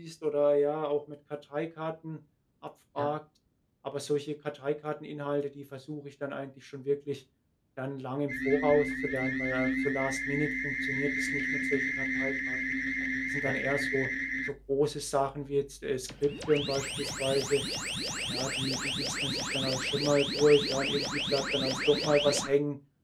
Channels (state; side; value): identical; both; correlation 1.00